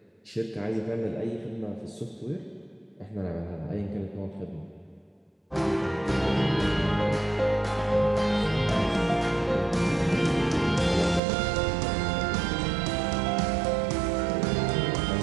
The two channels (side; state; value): left; drops out; at 11.2 s